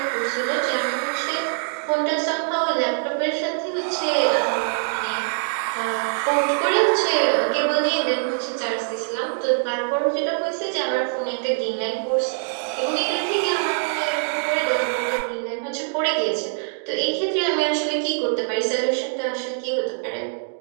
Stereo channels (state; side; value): silent; left; digital silence